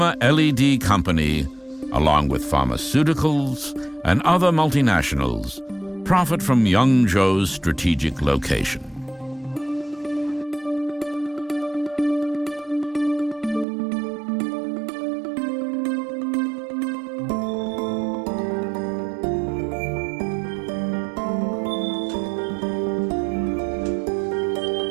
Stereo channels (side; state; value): left; drops out; at 13.7 s